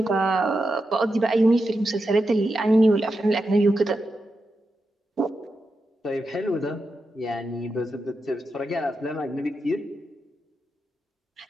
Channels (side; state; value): both; normal; correlation 0.88